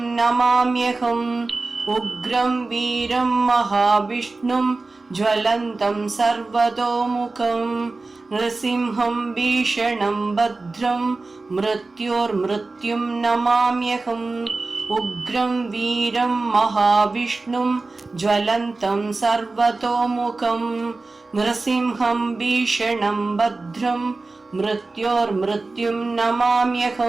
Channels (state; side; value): quieter; left; 3.5 dB